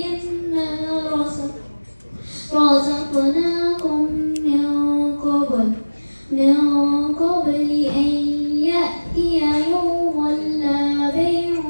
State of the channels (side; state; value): both; inverted; correlation -1.00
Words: razaqnakum min qabli an ya'tiya yawmun la